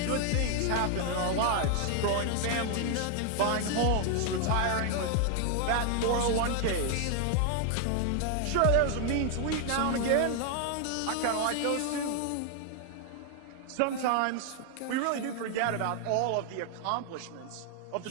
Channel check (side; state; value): both; different; correlation 0.00